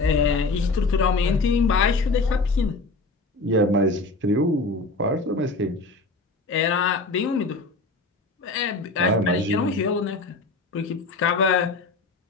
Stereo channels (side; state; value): right; quieter; 3.4 dB